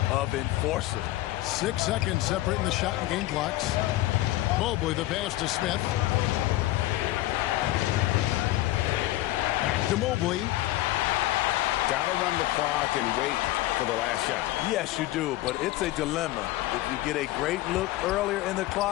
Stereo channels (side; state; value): right; quieter; 16.5 dB